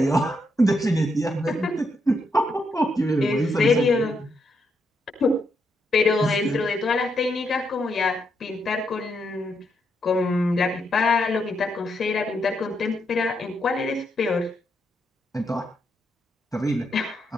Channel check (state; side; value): normal; both; correlation 0.80